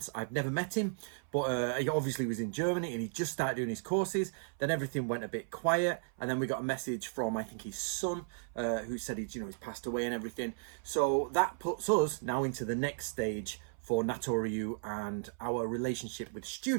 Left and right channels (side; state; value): left; silent; 54 dB below the other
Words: I've never met him, but he obviously was in Germany and he just started doing his courses. Then everything went a bit quiet, and then we got a message from, I think, his son, who said he's passed away and everything. So that puts us now into the next stage for Natori Ryu and our relationship with